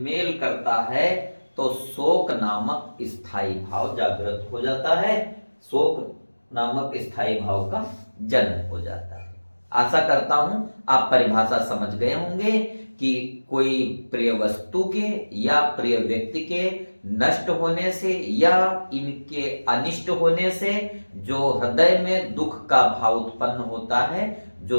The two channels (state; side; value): inverted; both; correlation -1.00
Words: करता है तो शोक नामक स्थायी भाव जागृत हो जाता है। शोक नामक स्थायी भाव का जन्म हो जाता है। आशा करता हूं आप परिभाषा समझ गए होंगे कि कोई प्रिय वस्तु के या प्रिय व्यक्ति के नष्ट होने से या इनके अनिष्ट होने से जो हृदय में दुख का भाव उत्पन्न होता है,